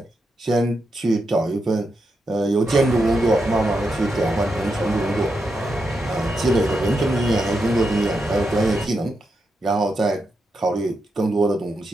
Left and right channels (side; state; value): both; normal; correlation 0.85